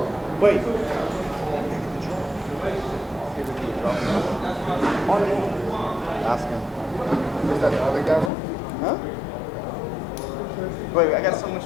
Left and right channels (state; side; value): drops out; right; at 8.3 s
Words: Wait. Ask him. Where's that other guy? Huh? Wait, I got so much